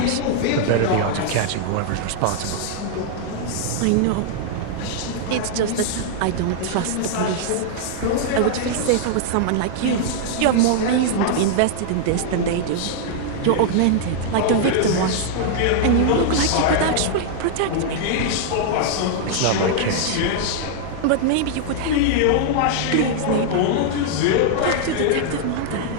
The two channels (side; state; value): both; different; correlation -0.01